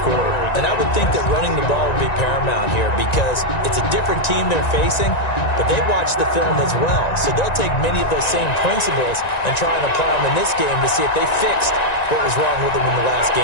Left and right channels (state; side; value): late; right; 1.9 ms